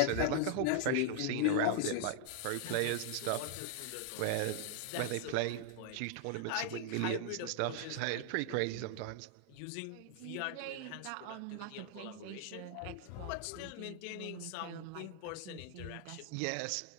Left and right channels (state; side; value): different; both; correlation 0.00